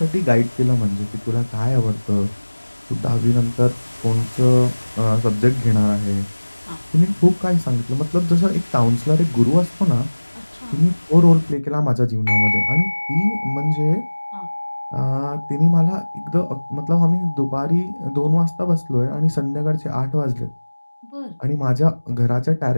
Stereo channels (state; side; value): inverted; both; correlation -1.00